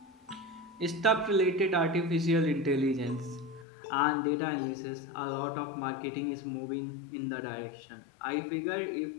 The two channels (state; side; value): drops out; right; at 3.7 s